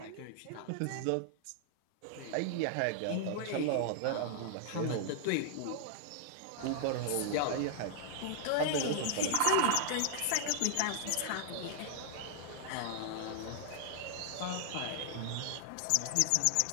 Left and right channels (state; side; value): different; both; correlation -0.01